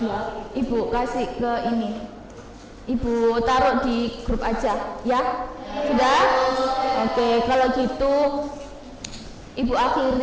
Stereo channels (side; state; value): both; identical; correlation 1.00